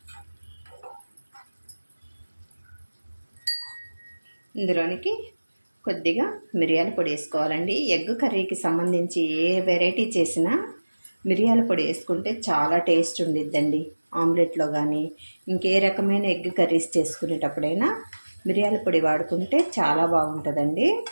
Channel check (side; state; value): both; inverted; correlation -1.00